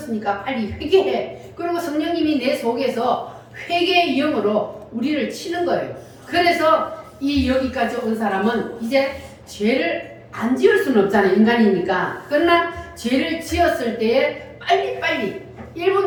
빨리 회개해. 그리고 성령님이 내 속에서 회개의 영으로 우리를 치는 거예요. 그래서 이 여기까지 온 사람은 이제 죄를 안 지을 수는 없잖아요. 인간이니까. 그러나 죄를 지었을 때에 빨리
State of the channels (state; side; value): identical; both; correlation 1.00